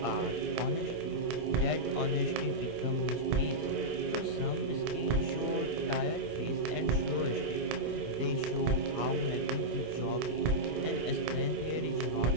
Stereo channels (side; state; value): left; late; 25 ms